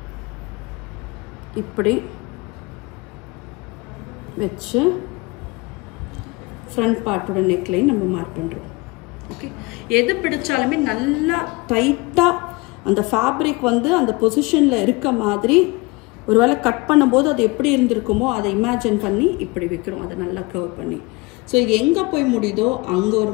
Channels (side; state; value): right; quieter; 24.6 dB